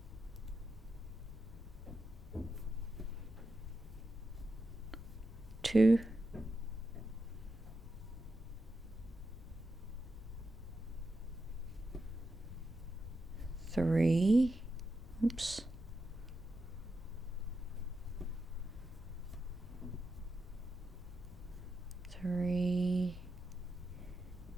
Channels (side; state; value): left; noise; rumble, 14 dB below the sound